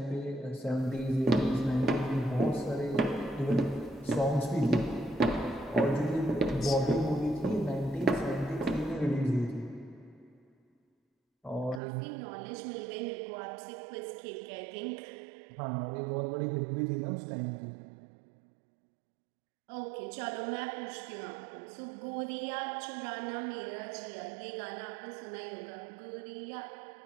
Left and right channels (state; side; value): drops out; left; at 11.8 s